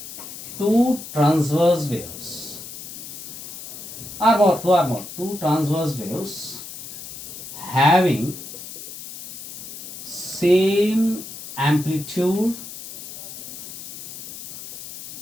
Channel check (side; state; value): left; noise; hiss, 12 dB below the sound